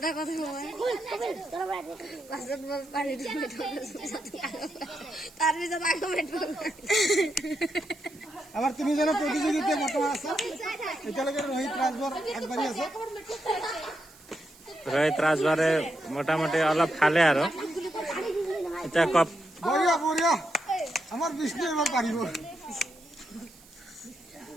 কথা তাৰপিছত আকৌ আমাৰ তিনিজনৰ প্ৰতিযোগিতা বৰ্তমান আছে। এতিয়ালৈকে ৰোহিত ৰাজবৰ আগবাঢ়ি আছে। ৰোহিত ৰাজবাৰে মোটামুটি অলপ খালে আৰু এতিয়া কপ বঢ়িয়া বঢ়িয়া, আমাৰ বিষ্ণু এবাৰ পাৰিব।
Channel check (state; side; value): noise; right; hiss, 24 dB below the sound